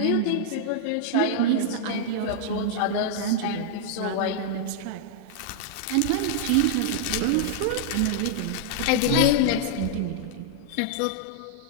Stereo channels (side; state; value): both; different; correlation -0.01